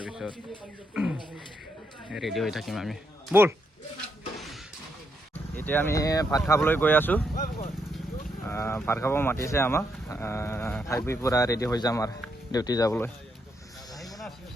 ৰেডি হৈ থাকিম আমি। ব'ল, এতিয়া আমি ভাত খাবলৈ গৈ আছোঁ। ভাত খাব মাতিছে আমাক, খাই বৈ পূৰা ৰেডি হৈ যাম আৰু ডিউটি যাবলৈ।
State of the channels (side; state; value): both; normal; correlation 0.79